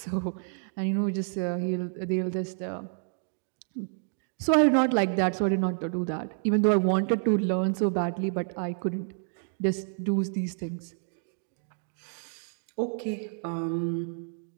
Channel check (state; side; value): silent; left; digital silence